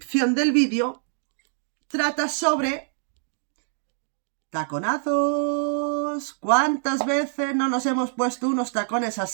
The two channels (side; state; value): left; silent; digital silence